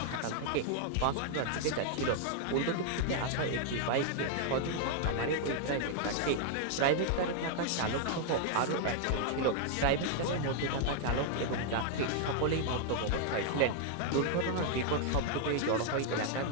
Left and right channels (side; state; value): both; different; correlation 0.00